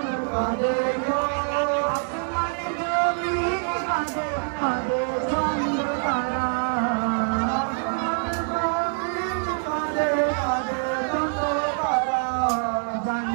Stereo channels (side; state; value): left; silent; 62 dB below the other